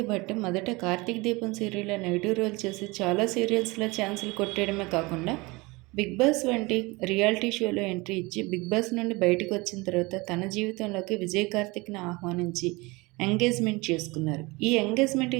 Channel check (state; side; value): quieter; left; 24.2 dB